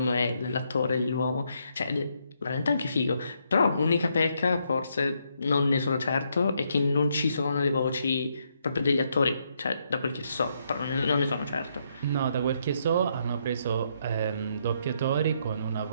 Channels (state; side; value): inverted; both; correlation -0.75